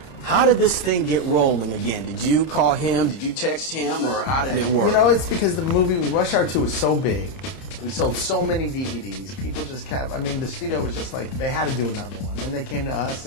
How did this thing get rolling again? Did you call him? Did you text him? Or how did it work? You know, it's because the movie Rush Hour 2 was so big. We sold so many DVDs. People just kept, I mean, the studio was just like, they had to do another one. And they came to us,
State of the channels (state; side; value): late; right; 30 ms